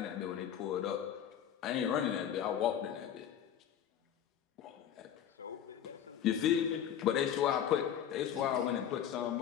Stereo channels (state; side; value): quieter; right; 9.5 dB